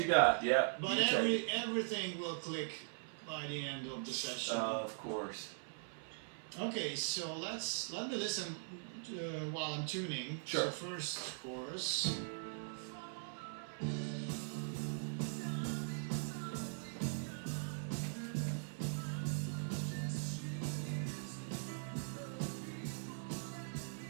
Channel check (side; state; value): left; silent; 50 dB below the other